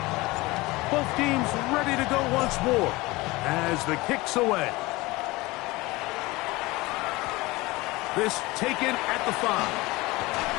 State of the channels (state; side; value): quieter; right; 21.5 dB